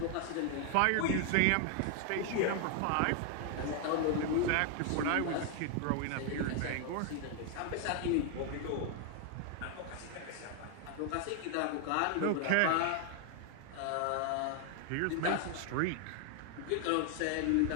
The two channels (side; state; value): both; different; correlation 0.00